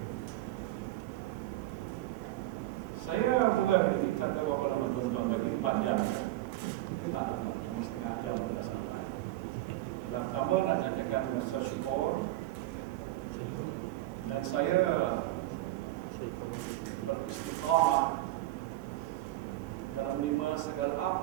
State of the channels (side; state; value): left; quieter; 16.6 dB